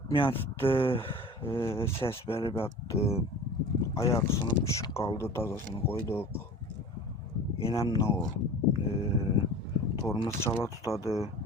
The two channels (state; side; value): normal; both; correlation 0.39